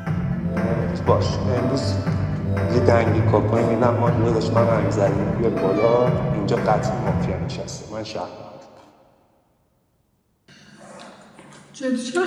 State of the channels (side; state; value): both; identical; correlation 1.00